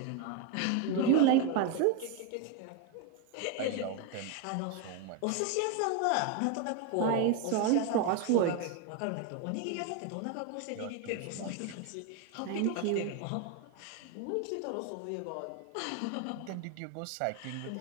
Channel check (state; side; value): different; both; correlation 0.01